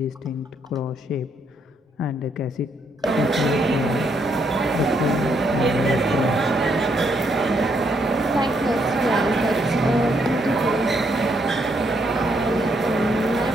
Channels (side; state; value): both; normal; correlation 0.74